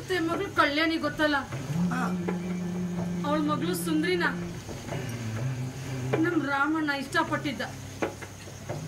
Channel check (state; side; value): identical; both; correlation 1.00